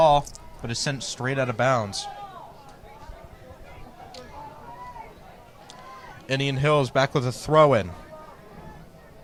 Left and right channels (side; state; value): both; identical; correlation 1.00